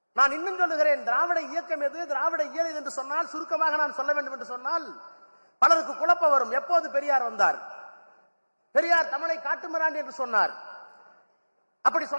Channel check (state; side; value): inverted; both; correlation -1.00